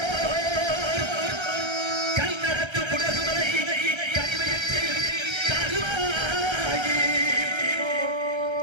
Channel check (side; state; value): left; late; 1.3 ms